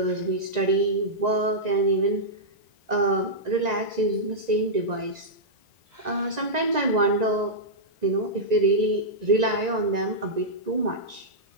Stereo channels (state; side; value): late; left; 1.9 ms